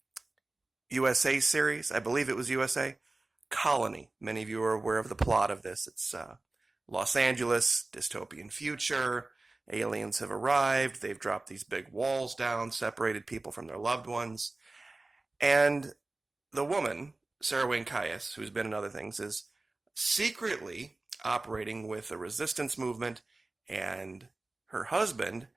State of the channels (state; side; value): quieter; left; 3.1 dB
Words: USA series. I believe it was USA. Colony. Many of you are aware of the plot of this. It's Los Angeles, dystopian future. Aliens have arrived. They've dropped these big walls down, separated people from their loved ones. And the woman, Sarah Wayne Caius, who's been in other things, is secretly operating with a resistance movement, and her husband